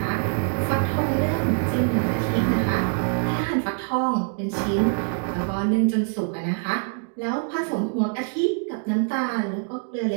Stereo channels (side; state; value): left; silent; 59 dB below the other